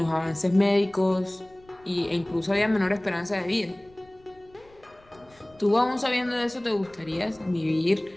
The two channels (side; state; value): left; noise; rumble, 29 dB below the sound